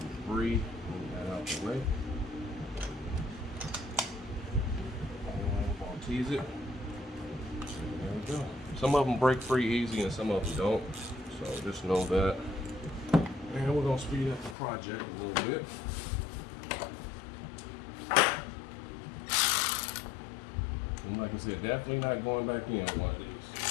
debris, move that out the way. Tease it. There we go. Some of them break free easy and some of them don't. So just know that. And we're going to speed up the project a little bit. And like I said, definitely not going back in on one of these.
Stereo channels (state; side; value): drops out; right; at 14.6 s